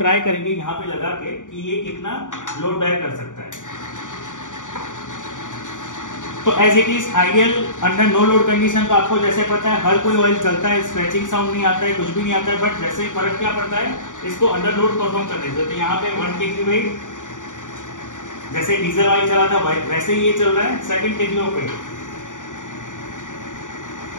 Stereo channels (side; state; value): right; late; 0.87 ms